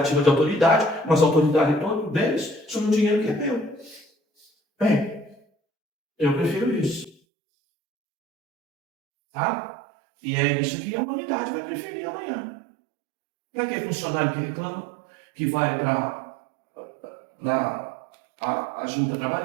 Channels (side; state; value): left; drops out; at 7.2 s